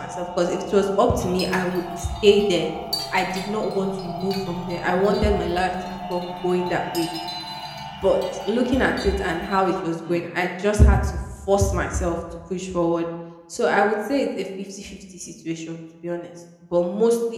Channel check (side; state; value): both; identical; correlation 1.00